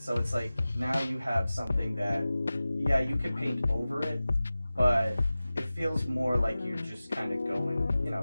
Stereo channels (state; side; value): inverted; both; correlation -0.97